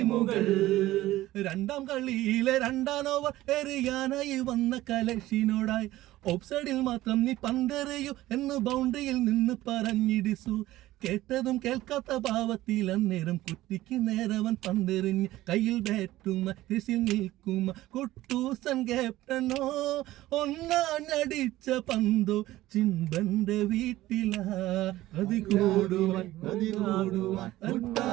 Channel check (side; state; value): left; quieter; 16.1 dB